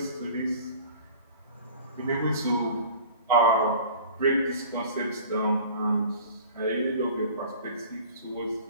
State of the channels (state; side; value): inverted; both; correlation -0.44